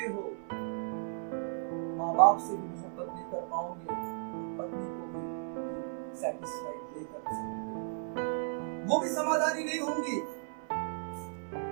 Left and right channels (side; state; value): left; silent; 55 dB below the other